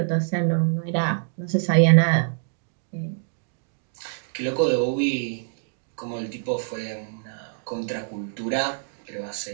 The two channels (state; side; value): silent; left; digital silence